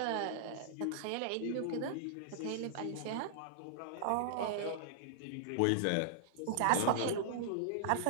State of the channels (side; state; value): both; different; correlation -0.01